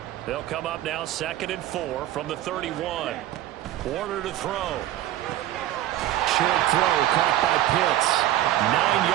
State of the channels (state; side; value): quieter; left; 13.6 dB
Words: They'll come up now 2nd and 4 from the 31. Warner to throw. Short throw caught by Pitts. 9